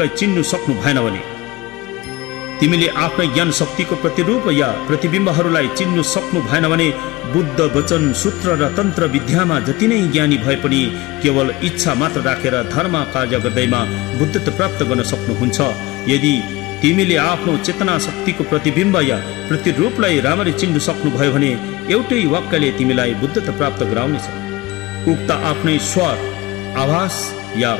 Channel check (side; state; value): right; quieter; 20.3 dB